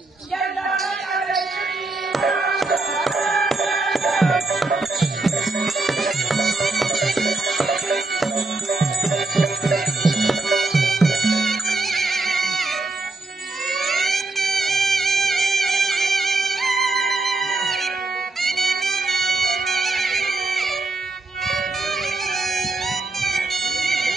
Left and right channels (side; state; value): left; quieter; 3.2 dB